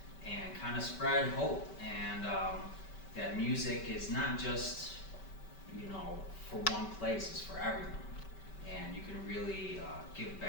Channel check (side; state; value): right; late; 5.2 ms